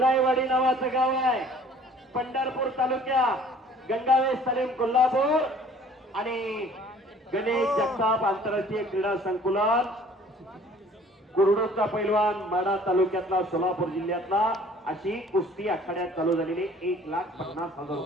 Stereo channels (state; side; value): normal; both; correlation 0.53